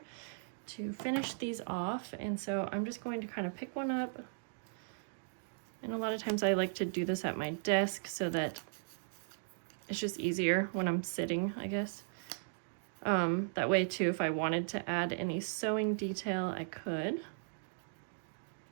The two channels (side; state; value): left; silent; digital silence